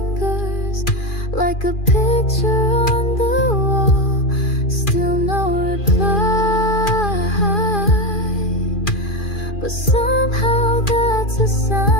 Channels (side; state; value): right; late; 2.4 ms